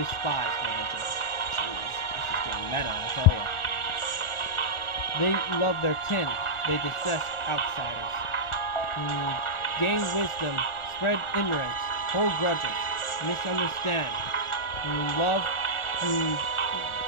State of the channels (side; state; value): right; late; 1.4 ms